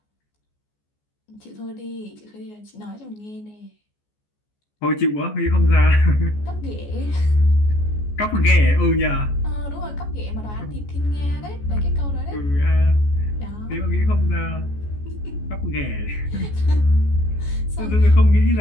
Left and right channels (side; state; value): right; late; 14 ms